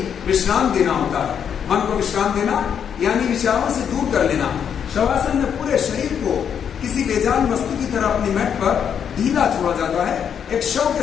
विश्राम देना होता है। मन को विश्राम देना यानी विचारों से दूर कर लेना। शवासन में पूरे शरीर को किसी बेजान वस्तु की तरह अपनी मैट पर ढीला छोड़ा जाता है। एक शव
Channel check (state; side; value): quieter; right; 8.0 dB